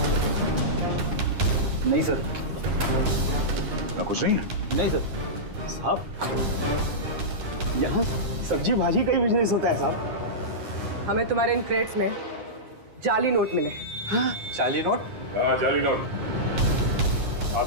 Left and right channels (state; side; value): late; left; 9.6 ms